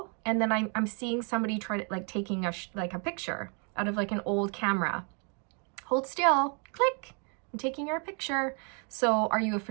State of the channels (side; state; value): left; quieter; 38.0 dB